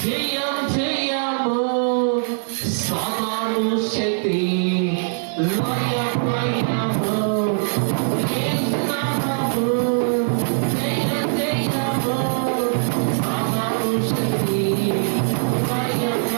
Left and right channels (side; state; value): left; silent; 61 dB below the other